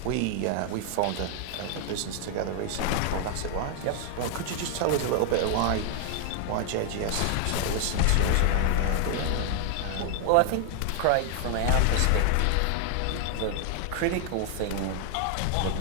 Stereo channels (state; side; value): different; both; correlation 0.00